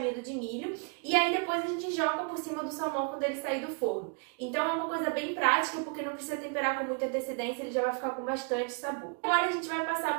de milho e aí depois a gente joga por cima do salmão quando ele sair do forno. Então é uma coisa bem prática porque não precisa temperar com muita antecedência, ele já vai ficar com bastante sabor. Agora a gente vai passar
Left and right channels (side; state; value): left; quieter; 39.5 dB